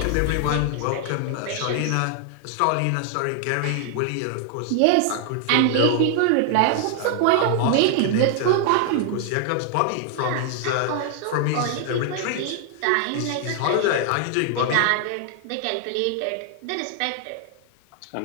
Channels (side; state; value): both; different; correlation 0.00